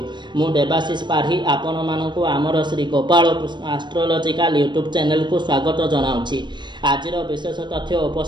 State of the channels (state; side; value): late; left; 0.22 ms